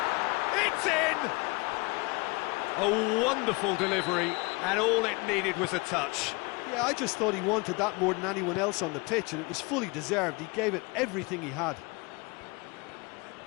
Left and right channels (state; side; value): quieter; right; 27.1 dB